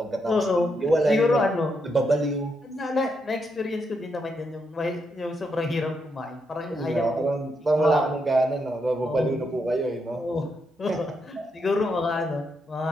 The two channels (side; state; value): both; normal; correlation 0.81